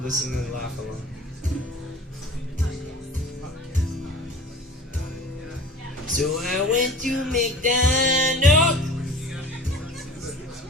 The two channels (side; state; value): both; normal; correlation 0.41